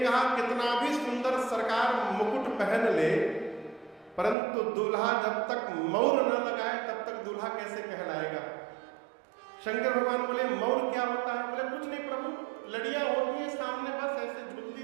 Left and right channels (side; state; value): left; drops out; at 4.4 s